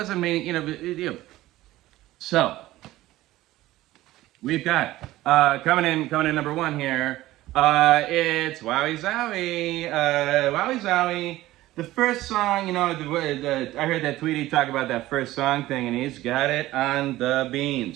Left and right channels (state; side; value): quieter; left; 16.4 dB